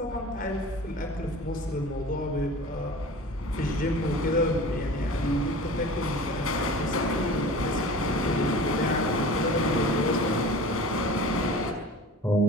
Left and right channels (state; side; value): normal; both; correlation 0.39